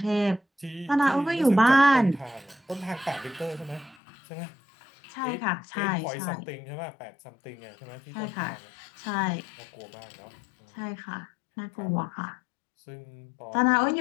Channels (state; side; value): drops out; right; at 4.0 s